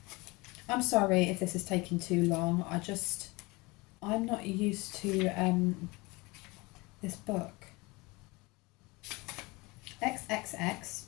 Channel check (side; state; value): right; quieter; 24.3 dB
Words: I'm sorry if this is taking too long. I'm not used to this book. XXX.